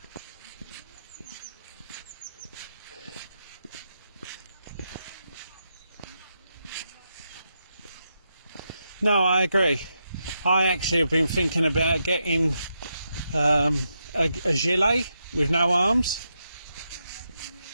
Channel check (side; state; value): both; inverted; correlation -0.84